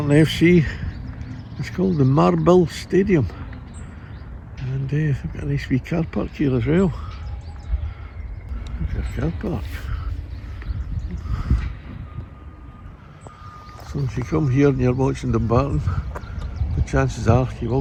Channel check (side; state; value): both; identical; correlation 1.00